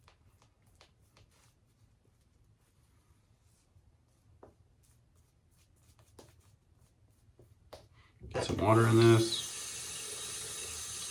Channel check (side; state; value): both; identical; correlation 1.00